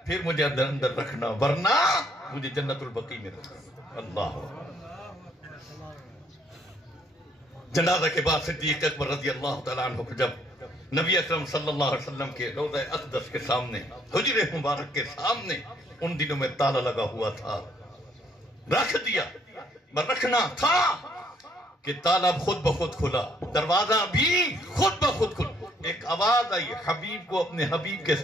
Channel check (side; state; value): both; normal; correlation 0.66